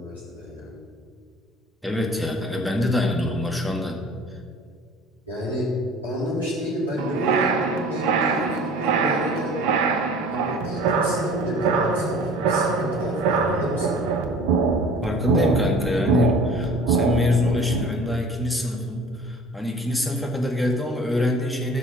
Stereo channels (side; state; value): both; normal; correlation 0.46